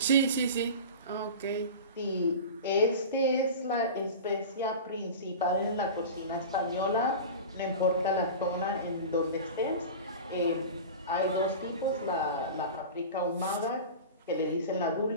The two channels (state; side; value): inverted; both; correlation -0.32